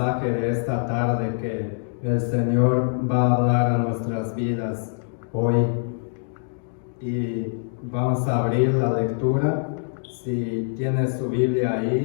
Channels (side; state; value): right; silent; digital silence